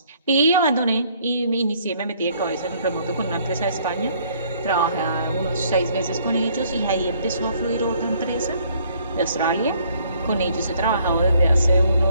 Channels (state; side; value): inverted; both; correlation -0.63